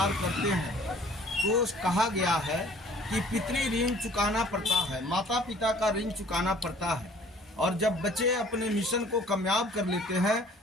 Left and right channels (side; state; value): both; normal; correlation 0.53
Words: करते हैं तो कहा गया है कि पितृ ऋण चुकाना पड़ता है, माता पिता का ऋण चुकाना पड़ता है। और जब बच्चे अपने मिशन को कामयाब कर लेते हैं